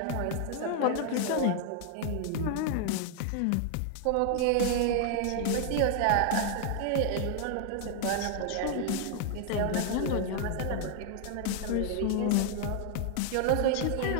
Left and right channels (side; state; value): both; different; correlation 0.00